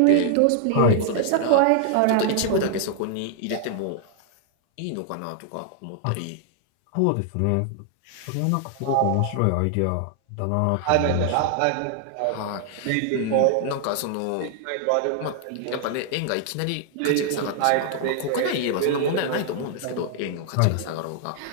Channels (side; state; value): both; different; correlation 0.00